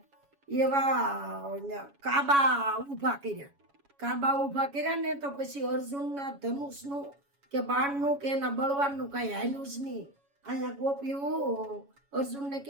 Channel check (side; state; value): left; late; 7.2 ms